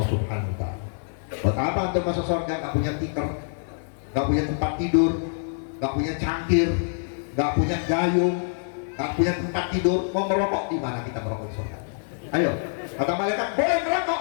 Subhanahu wa Ta'ala. Buat apa untuk masuk surga? Gak punya tikar, gak punya tempat tidur, nggak punya cangkir, nggak punya gayung, nggak punya tempat tidur, mau merokok di mana kita merokok di surga? Ayo, kata malaikat boleh merokok,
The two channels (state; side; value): silent; right; digital silence